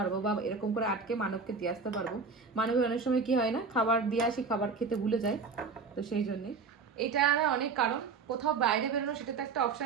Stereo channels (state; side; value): quieter; left; 4.8 dB